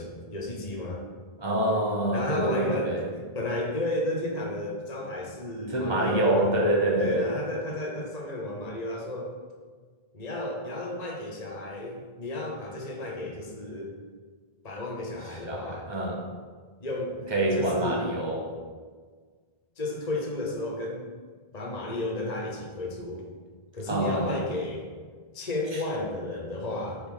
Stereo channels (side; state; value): right; late; 1.9 ms